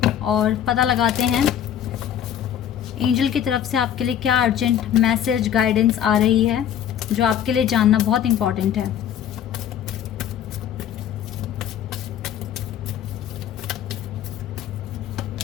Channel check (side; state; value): right; quieter; 10.0 dB